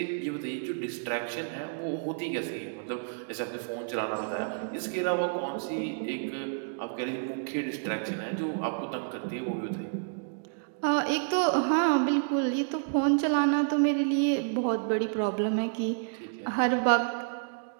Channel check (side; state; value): left; silent; digital silence